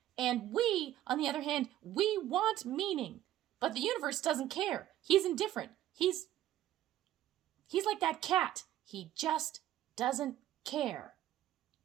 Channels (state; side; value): quieter; left; 13.1 dB